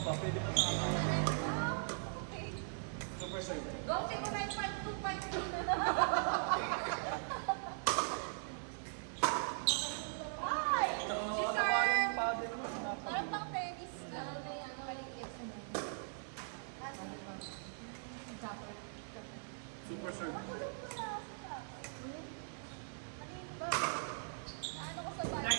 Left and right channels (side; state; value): left; silent; 51 dB below the other